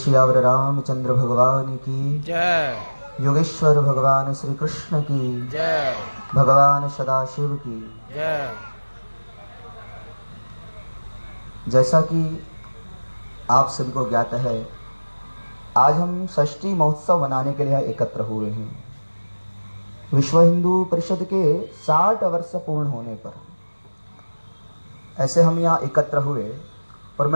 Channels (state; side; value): inverted; both; correlation -1.00